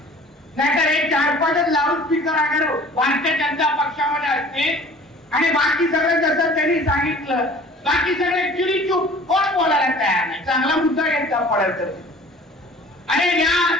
नाहीतर हे 4-5 लाऊड स्पीकर अगर भारतीय जनता पक्षामध्ये असते आणि बाकी सगळं जसं त्यांनी सांगितलं बाकी सगळे चिडीचूप कोण बोलायला तयार नाही. चांगला मुद्दा घेतला पडेल तर. आणि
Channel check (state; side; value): normal; both; correlation 0.47